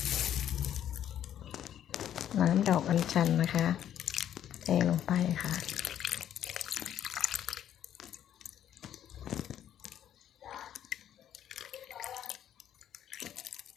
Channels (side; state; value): right; quieter; 10.6 dB